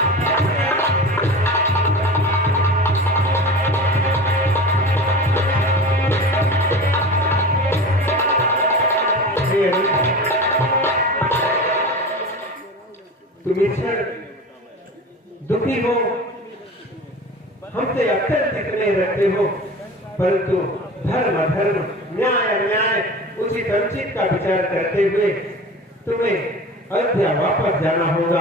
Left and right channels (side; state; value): both; normal; correlation 0.34